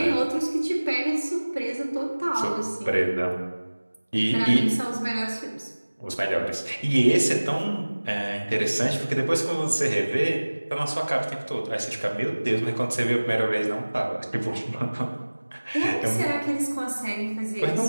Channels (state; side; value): inverted; both; correlation -1.00